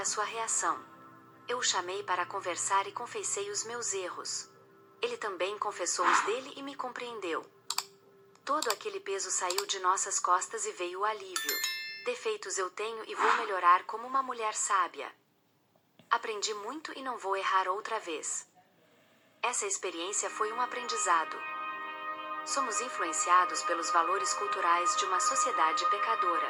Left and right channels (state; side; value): identical; both; correlation 1.00